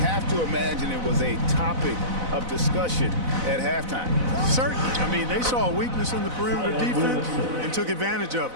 to imagine it was a topic of discussion at halftime. Certainly. I mean, they saw a weakness in the perimeter defense and took advantage of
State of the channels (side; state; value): left; late; 4.0 ms